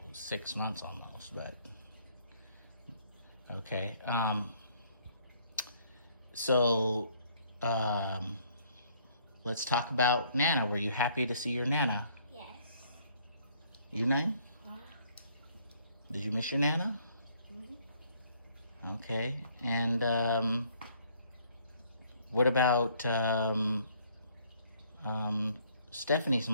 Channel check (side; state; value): both; inverted; correlation -0.64